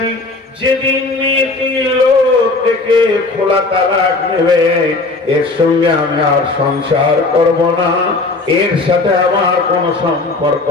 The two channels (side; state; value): right; quieter; 3.4 dB